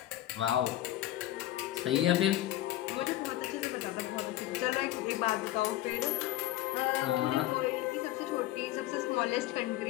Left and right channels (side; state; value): right; quieter; 14.8 dB